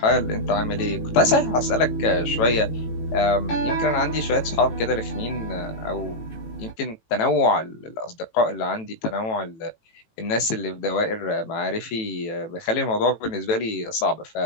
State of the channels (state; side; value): late; right; 18 ms